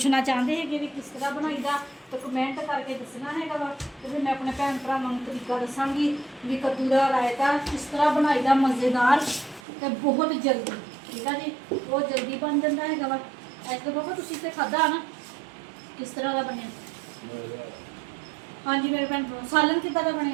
ਚਾਹੁੰਦੇ ਹੈਗੇ ਵੀ ਕਿਸ ਤਰ੍ਹਾਂ ਬਣਾਈਦਾ, ਤਾਂ ਕਮੈਂਟ ਕਰਕੇ ਦੱਸਣਾ ਹੈਗਾ ਵਾ, ਤੇ ਫਿਰ ਮੈਂ ਆਪਣੇ ਭੈਣ ਭਰਾਵਾਂ ਨੂੰ ਤਰੀਕਾ ਦੱਸਾਂਗੀ ਵੀ ਕੱਦੂ ਦਾ ਰਾਇਤਾ ਕਿਸ ਤਰ੍ਹਾਂ ਬਣਾਈਦਾ ਮਜ਼ੇਦਾਰ, ਤੇ ਬਹੁਤ ਜਲਦੀ, ਠੀਕ ਆ ਜੀ। ਬਹੁਤ ਜਲਦੀ ਬਣ ਜਾਂਦਾ ਹੈਗਾ ਵਾ। ਐਸ ਤੋਂ ਬਾਬਾ ਤੁਸੀਂ ਤੇ ਖਾਧਾ ਨਾ, ਕਿਸ ਤਰ੍ਹਾਂ ਦਾ ਬਣਿਆ? ਹਾਂਜੀ ਮੇਰੇ ਭੈਣ ਭਰਾ, ਸਾਲਨ ਕਿੱਦਾਂ ਦਾ ਬਣਿਆ?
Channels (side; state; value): left; drops out; at 9.6 s